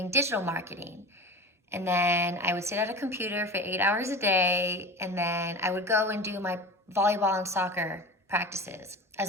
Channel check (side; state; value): both; normal; correlation 0.32